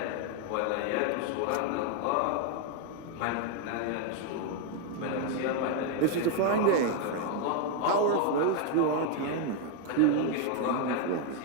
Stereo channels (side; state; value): both; different; correlation 0.01